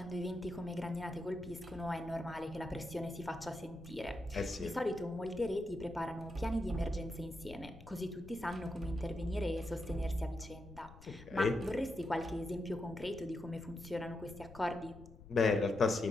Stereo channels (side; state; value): left; noise; rumble, 17 dB below the sound